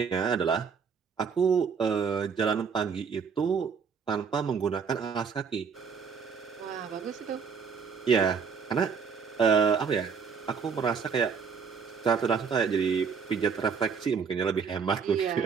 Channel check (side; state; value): left; quieter; 6.1 dB